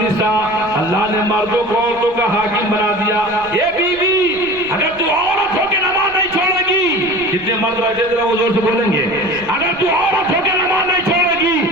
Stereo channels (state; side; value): noise; right; rumble, 23 dB below the sound